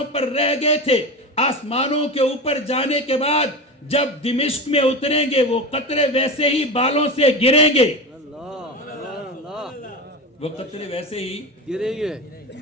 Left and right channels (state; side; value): normal; both; correlation 0.24